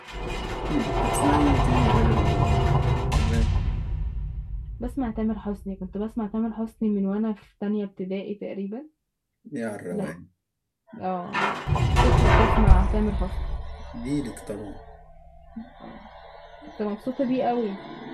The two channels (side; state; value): both; identical; correlation 1.00